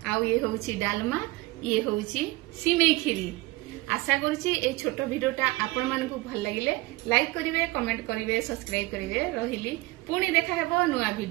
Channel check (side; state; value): left; quieter; 21.2 dB